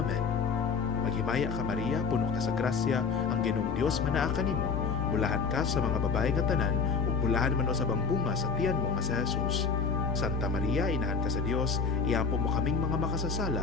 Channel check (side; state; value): right; quieter; 5.3 dB